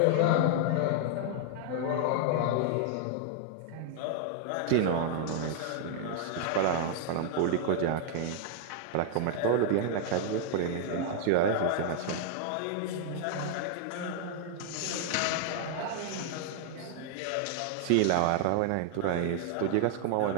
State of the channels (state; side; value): different; both; correlation 0.00